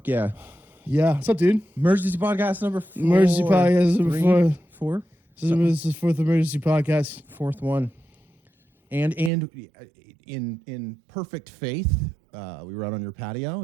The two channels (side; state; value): left; drops out; at 9.3 s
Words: yeah. Yeah. What's up, dude? Emergency podcast number 4. Emergency podcast number 4. 4? This is fourth emergency podcast. Fourth one. And in perfect faith, we were out on your patio